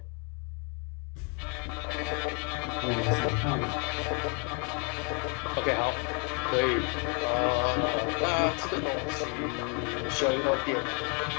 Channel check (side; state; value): right; quieter; 35.0 dB